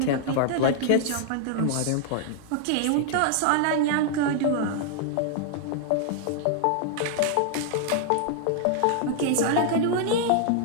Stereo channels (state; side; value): different; both; correlation -0.01